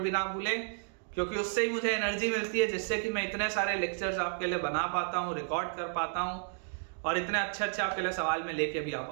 ना भूलें, क्योंकि उससे ही मुझे एनर्जी मिलती है, जिससे कि मैं इतने सारे लेक्चर्स आपके लिए बना पाता हूँ, रिकॉर्ड कर पाता हूँ, और इतने अच्छे आपके लिए सवाल में लेके भी आ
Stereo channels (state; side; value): silent; left; digital silence